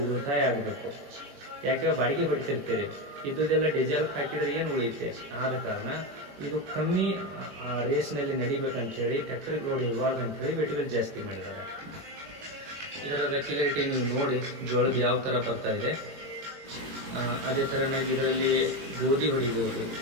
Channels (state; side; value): late; left; 21 ms